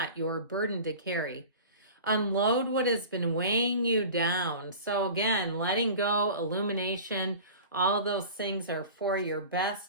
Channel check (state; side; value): inverted; both; correlation -0.38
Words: your burden to carry. Unload what has been weighing you down. So again, letting go, illumination, all those things are for your